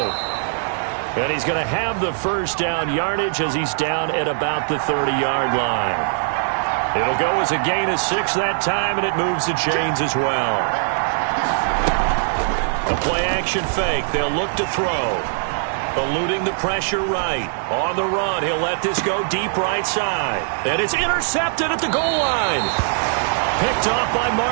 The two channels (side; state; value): left; silent; digital silence